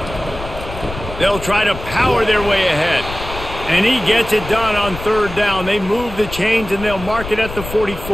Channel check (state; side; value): noise; left; rumble, 11 dB below the sound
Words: They'll try to power their way ahead. And he gets it done on third down. They move the chains, and they'll mark it at the